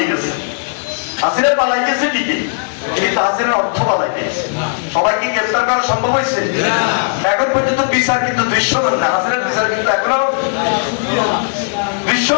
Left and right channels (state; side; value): silent; right; 57 dB below the other